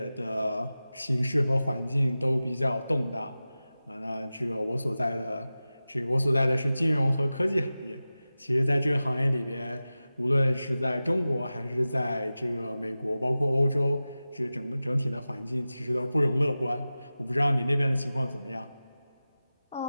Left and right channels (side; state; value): both; inverted; correlation -0.95